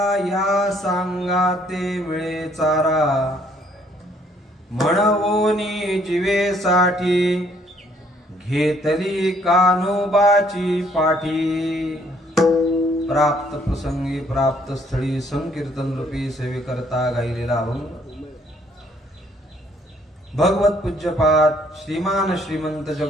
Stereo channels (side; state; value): both; normal; correlation 0.65